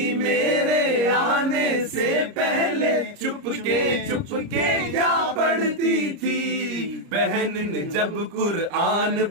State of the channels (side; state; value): left; late; 30 ms